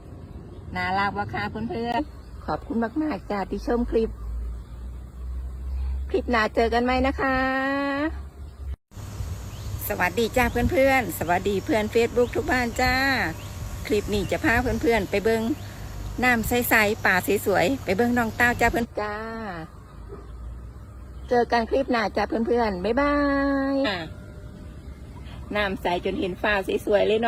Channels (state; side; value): identical; both; correlation 1.00